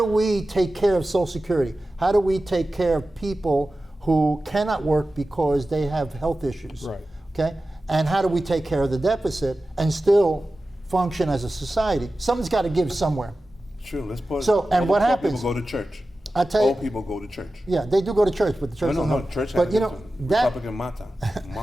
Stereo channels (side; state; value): both; normal; correlation 0.94